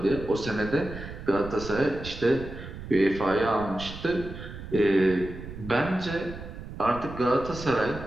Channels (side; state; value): right; noise; rumble, 11 dB below the sound